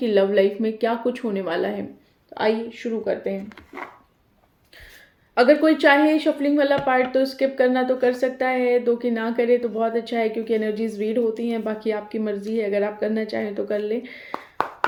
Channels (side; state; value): both; identical; correlation 1.00